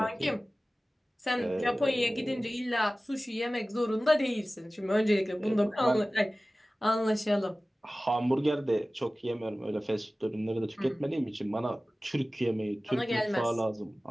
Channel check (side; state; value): both; normal; correlation 0.97